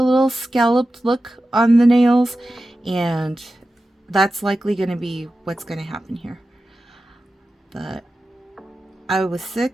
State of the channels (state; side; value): normal; both; correlation 0.93